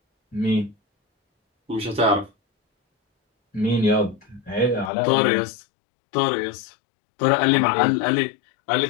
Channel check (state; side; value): drops out; right; at 4.9 s